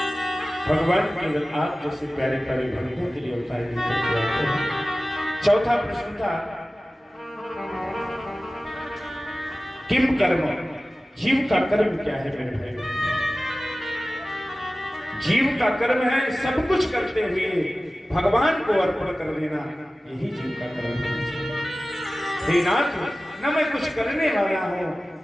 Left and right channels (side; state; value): both; normal; correlation 0.96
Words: भगवान केवल आप जैसे प्यारे प्यारे भक्तों के लिए अवतार लेकर के आते हैं। चौथा प्रश्न था किम कर्म, जीव का कर्म क्या है मेरे भाई? जीव का कर्म है सब कुछ करते हुए भगवान को अर्पण कर देना, यही जीव का कर्म है। हे नाथ, न मैं कुछ करने वाला हूं,